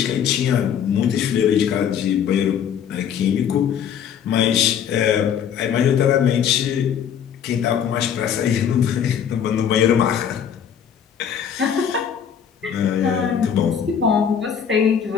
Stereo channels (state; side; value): quieter; right; 8.3 dB